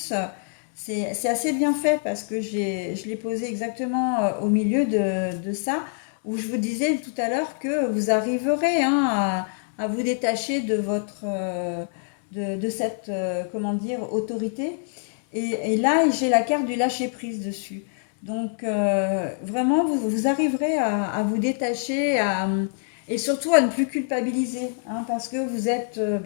c'est assez bien fait parce que je l'ai posé exactement au milieu de ça, où je vous disais tout à l'heure que vous arriverez, hein, à vous détacher de de cette, comment dire, autorité. Et là, j'ai la carte du lâcher-prise dessus. Donc, vraiment, vous arriverez à vous détacher et surtout à ne plus culpabiliser, hein, parce que vous êtes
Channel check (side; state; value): right; silent; digital silence